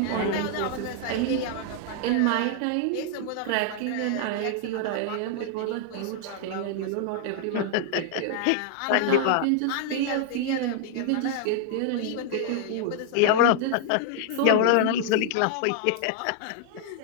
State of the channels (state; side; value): different; both; correlation -0.01